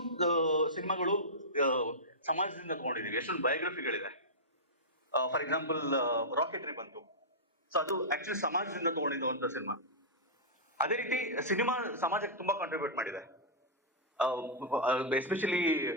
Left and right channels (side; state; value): both; normal; correlation -0.12